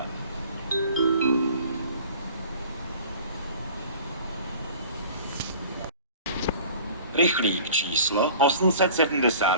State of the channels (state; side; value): inverted; both; correlation -0.46